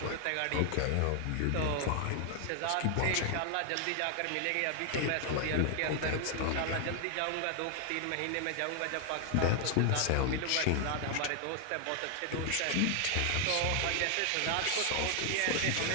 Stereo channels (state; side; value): different; both; correlation 0.00